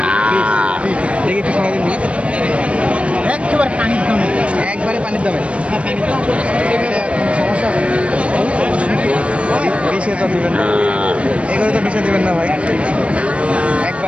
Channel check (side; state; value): left; late; 0.061 ms